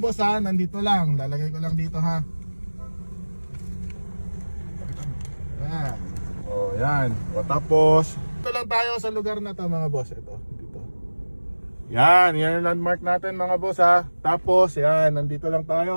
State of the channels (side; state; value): both; inverted; correlation -1.00